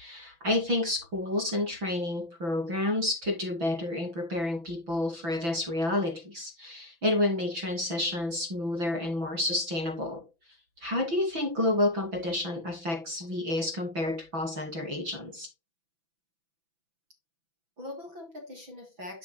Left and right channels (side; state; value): left; late; 6.0 ms